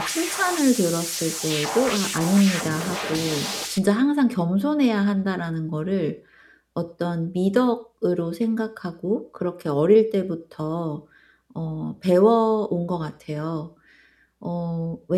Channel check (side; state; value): both; identical; correlation 1.00